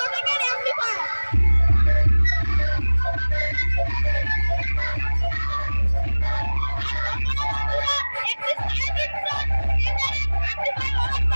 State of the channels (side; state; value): both; inverted; correlation -1.00